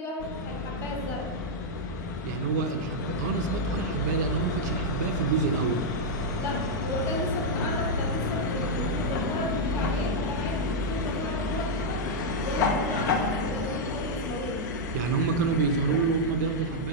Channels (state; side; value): normal; both; correlation -0.03